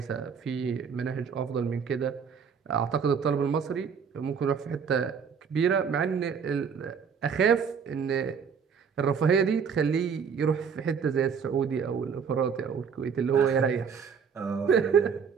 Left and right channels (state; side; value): quieter; left; 6.5 dB